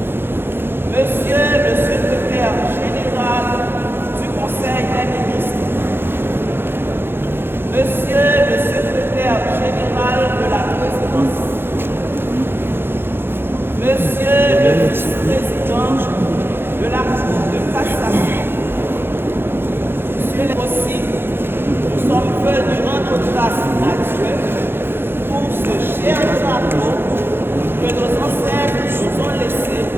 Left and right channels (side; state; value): left; late; 0.10 ms